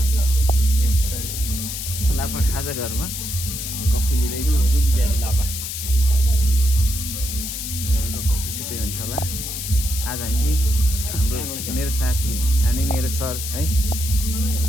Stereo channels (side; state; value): left; noise; hiss, 6 dB below the sound